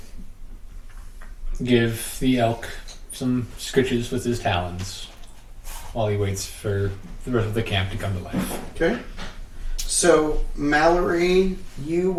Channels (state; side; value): identical; both; correlation 1.00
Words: give the elk some scritches with his talons while he waits for the rest of the camp to come to life. Okay. So, Mallory, you